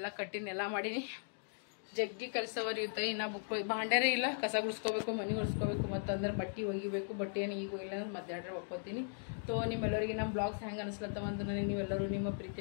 ಕಟ್ಟಿನಿ ಎಲ್ಲ ಮಾಡೀನಿ ಜಗ್ಗಿ ಕೆಲಸವರಿ ಇರ್ತಾವೆ ಇನ್ನು ಬುಕ್ ಭಾಂಡಾರೇ ಇಲ್ಲ ಕಸ ಗುಡಿಸ್ಕೋಬೇಕು ಮನೆ ಒರೆಸ್ಕೋಬೇಕು ಮತ್ತಂದ್ರೆ ಬಟ್ಟೆ ಒಗಿಬೇಕು ಬಟ್ಟೆಯನ್ನು ಈಗ ಇಲ್ಲ ಅಂದ್ರೆ ಮಧ್ಯಾಹ್ನ ಒಕ್ಕೋತೀನಿ ತೋ ನಿಮ್ಮೆಲ್ಲರಿಗೆ ನಮ್ಮ ಬ್ಲಾಗ್ಸ್ ಹೆಂಗೆ ಅನಿಸ್ಲತ್ತವಂತ ನನಗೆ ನೀವೆಲ್ಲರೂ ನಿಮ್ಮ ಪ್ರೀತಿ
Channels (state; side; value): silent; right; digital silence